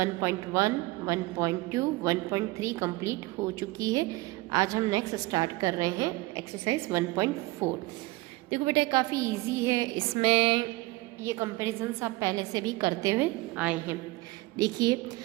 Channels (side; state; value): left; quieter; 20.7 dB